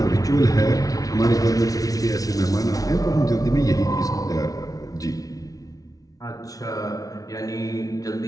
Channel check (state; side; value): late; right; 0.18 ms